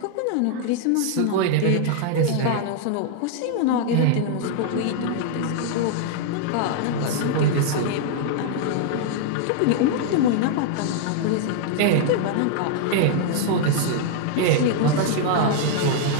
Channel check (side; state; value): both; different; correlation -0.01